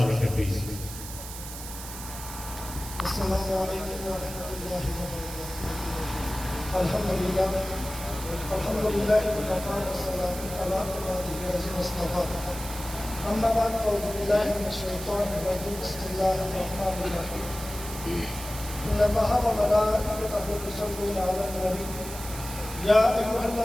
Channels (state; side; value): noise; right; hiss, 11 dB below the sound